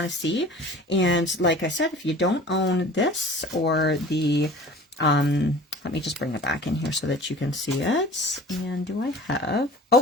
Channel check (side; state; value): both; normal; correlation 0.43